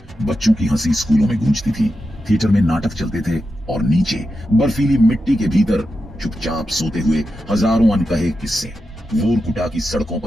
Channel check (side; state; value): both; normal; correlation 0.89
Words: बच्चों की हंसी स्कूलों में गूंजती थी, थिएटर में नाटक चलते थे और नीचे बर्फीली मिट्टी के भीतर चुपचाप सोते हुए हजारों अनकहे किस्से। वोरकुटा की सड़कों